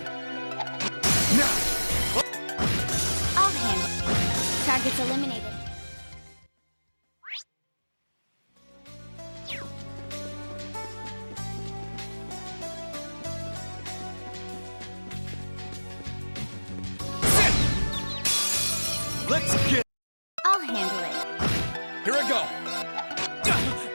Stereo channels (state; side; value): inverted; both; correlation -1.00